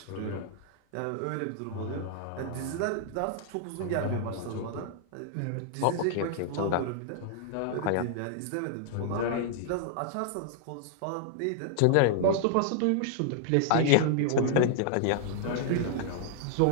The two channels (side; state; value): both; different; correlation -0.01